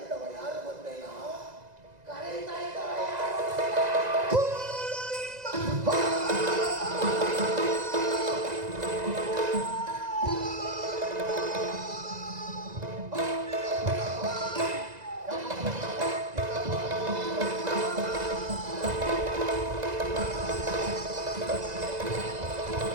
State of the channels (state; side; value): late; left; 2.0 ms